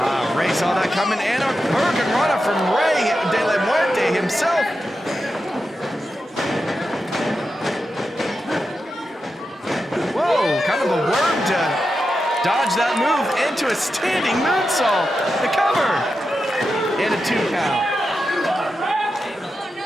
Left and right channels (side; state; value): both; normal; correlation 0.89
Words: Ray saw that coming, and a hurricanrana from Rey de la Muerte himself. Whoa, kind of a worm to dodge that move into a standing moonsault. The cover and a 2 count.